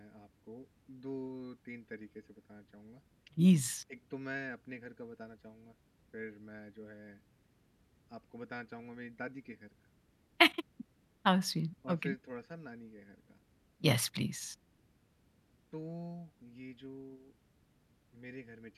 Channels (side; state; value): both; identical; correlation 1.00